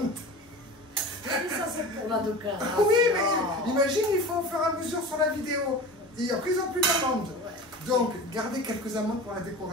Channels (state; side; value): normal; both; correlation 0.34